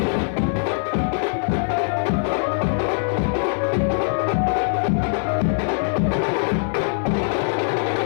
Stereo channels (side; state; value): right; silent; digital silence